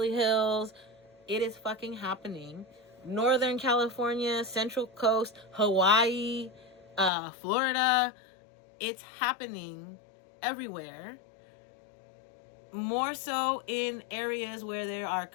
Hills. It is fucking happening. Northern California, Central Coast, Hawaii, Florida. It's happening everywhere. More so in areas where there are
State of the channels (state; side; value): drops out; right; at 7.1 s